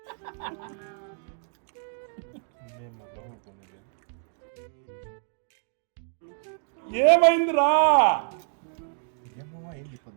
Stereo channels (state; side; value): silent; left; digital silence